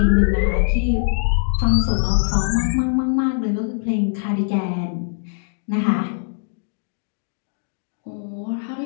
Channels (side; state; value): right; silent; digital silence